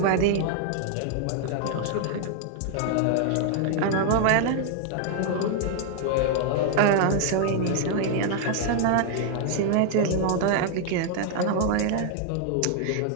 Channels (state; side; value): different; both; correlation 0.00